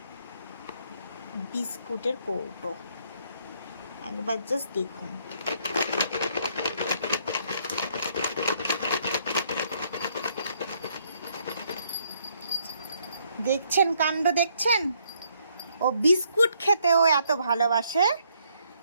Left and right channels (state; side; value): inverted; both; correlation -0.70